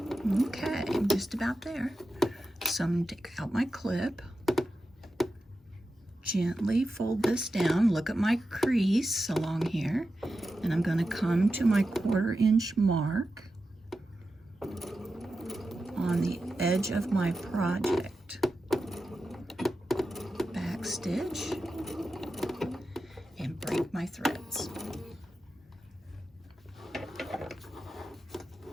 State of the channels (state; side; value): normal; both; correlation 0.91